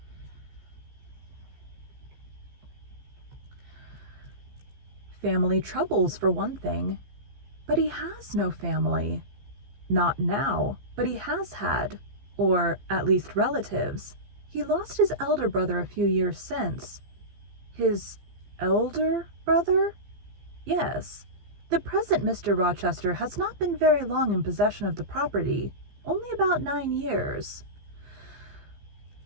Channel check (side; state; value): left; late; 15 ms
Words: "Family troubles, for one thing." "But he has no family." "Not now, but he has had, or at least relatives. He lost his elder brother a few years since." "His elder brother?" "Yes. The present Mr. Rochester has not been very long in possession of the property, only about 9 years."